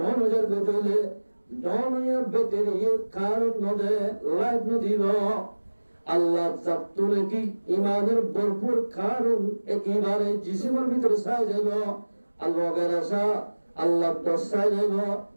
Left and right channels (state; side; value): inverted; both; correlation -1.00